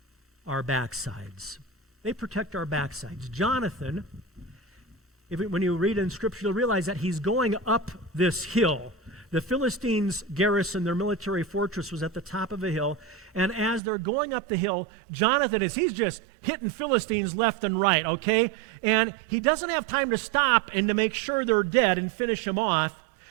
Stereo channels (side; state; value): left; drops out; at 13.8 s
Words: our backsides. They protect our backsides. Jonathan, when you read in Scripture, you'll realize that he's going up this hill. The Philistines' garrison, their military fortress, was at the top of a hill. And as they're going up the hill, Jonathan he's just hitting Philistines left and right, okay? And he doesn't have time to stop and to make sure they're dead and finish them off